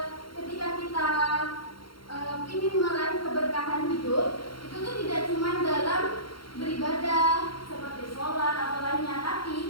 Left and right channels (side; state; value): right; late; 0.73 ms